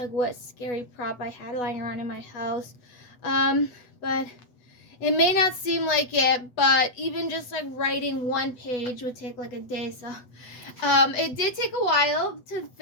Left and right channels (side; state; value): right; late; 8.2 ms